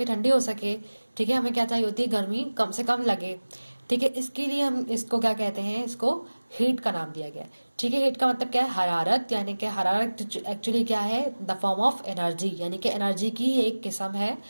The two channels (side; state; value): both; inverted; correlation -1.00